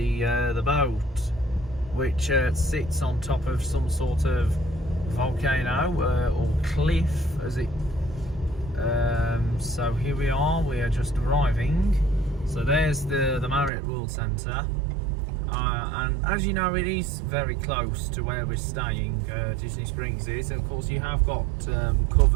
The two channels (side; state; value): left; drops out; at 13.7 s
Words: boat, which sits on top of some sort of volcano or cliff, as it. So here we are just arriving. So there's the Marriott World Centre, and as you know, it is very close to where we're staying. Disney Springs is, of course you have got